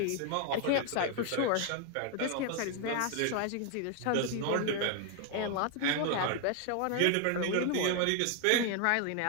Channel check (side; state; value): both; different; correlation 0.01